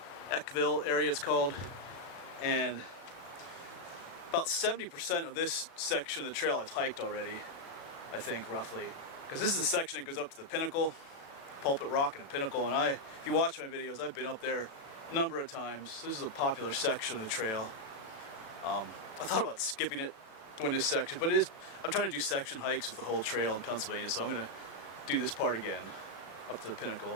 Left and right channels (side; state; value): right; late; 36 ms